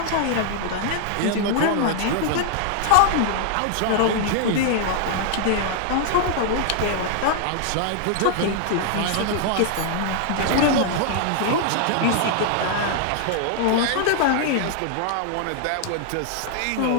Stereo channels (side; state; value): both; different; correlation 0.00